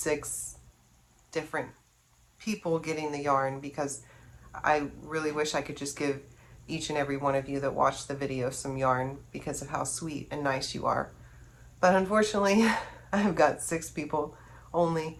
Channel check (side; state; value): both; identical; correlation 1.00